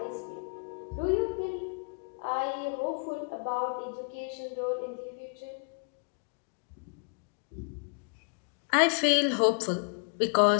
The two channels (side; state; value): right; quieter; 38.5 dB